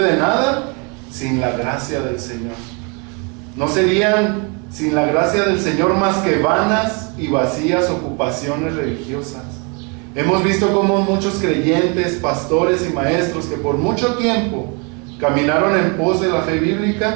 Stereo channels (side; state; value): left; quieter; 33.3 dB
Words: nada sin la gracia del Señor. No serían sin la gracia del Señor más que vanas y vacías ocupaciones religiosas. Hemos visto cómo muchos creyentes, pastores y maestros que por mucho tiempo caminaron en pos de la fe